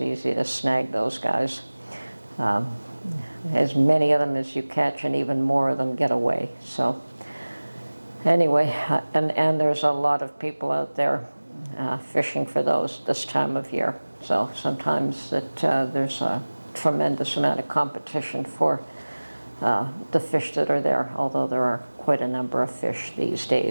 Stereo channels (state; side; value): inverted; both; correlation -1.00